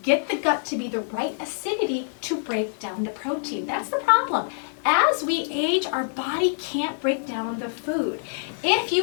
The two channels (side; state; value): right; silent; digital silence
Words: get the gut to be the right acidity to break down the protein. That's the problem. As we age, our body can't break down the food. If